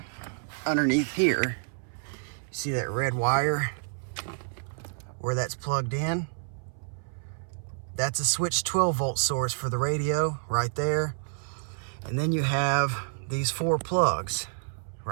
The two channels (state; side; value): silent; left; 59 dB below the other